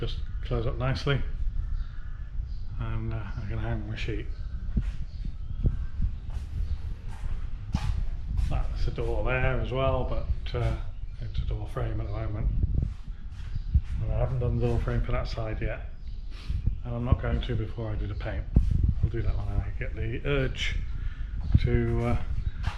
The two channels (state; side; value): identical; both; correlation 1.00